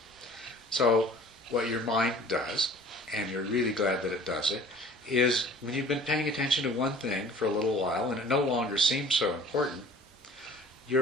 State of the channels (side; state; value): both; normal; correlation 0.48